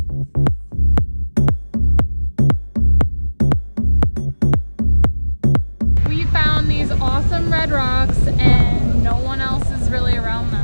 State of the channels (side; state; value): both; inverted; correlation -1.00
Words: We found these awesome red rocks and no one else is really around